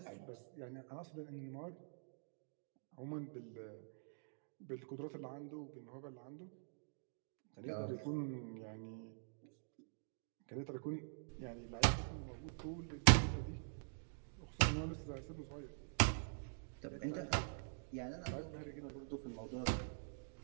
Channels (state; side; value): silent; left; digital silence